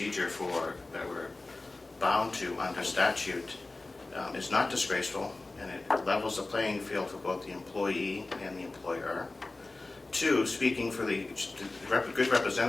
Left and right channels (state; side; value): quieter; right; 3.2 dB